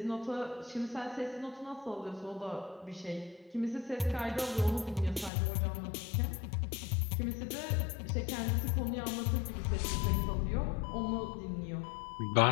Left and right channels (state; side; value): drops out; right; at 5.3 s